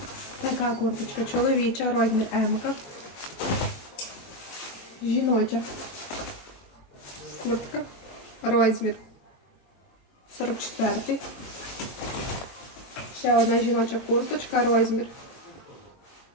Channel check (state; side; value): late; right; 22 ms